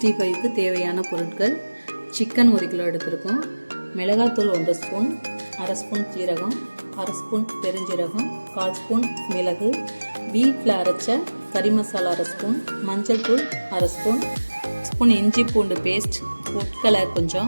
தேவையான பொருட்கள்: சிக்கன் 1 கிலோ எடுத்திருக்கோம், மிளகாத்தூள் 1 ஸ்பூன், அரை ஸ்பூன் சீரகம், அரை ஸ்பூன் பெருஞ்சீரகம், 1/4 ஸ்பூன் மிளகு, வீட்டில் அரைச்ச கறி மசாலா அரை ஸ்பூன், மஞ்சள் தூள் அரை ஸ்பூன், ஸ்பூன் இஞ்சி பூண்டு பேஸ்ட், ஃபுட் கலர்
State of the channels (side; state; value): both; inverted; correlation -1.00